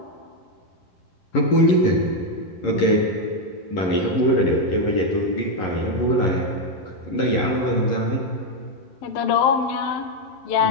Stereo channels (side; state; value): right; late; 11 ms